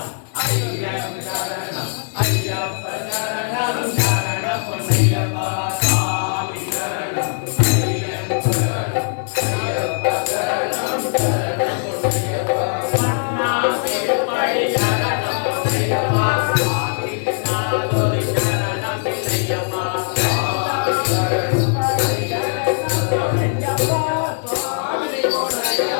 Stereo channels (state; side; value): silent; right; 60 dB below the other